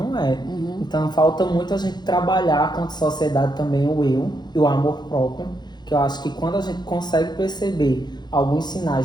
é. Então falta muito a gente trabalhar quanto sociedade também o eu e o amor próprio, que eu acho que quando a gente consegue perceber alguns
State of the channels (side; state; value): right; late; 0.21 ms